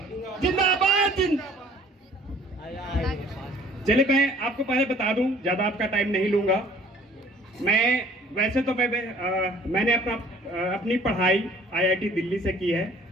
जिंदाबाद। चलिए, मैं आपको पहले बता दूं, ज्यादा आपका टाइम नहीं लूंगा। मैं वैसे तो मैंने अपनी पढ़ाई आईआईटी दिल्ली से की है।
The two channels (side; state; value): both; normal; correlation 0.54